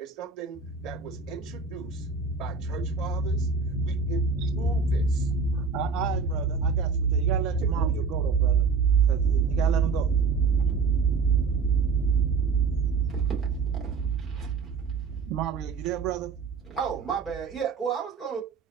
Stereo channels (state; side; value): quieter; left; 5.1 dB